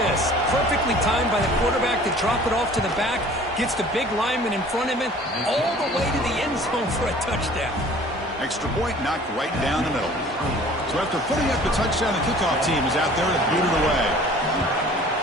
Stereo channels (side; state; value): both; normal; correlation 0.49